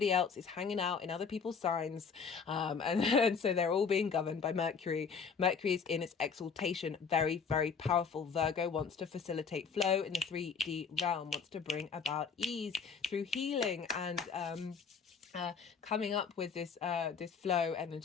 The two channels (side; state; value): right; quieter; 5.9 dB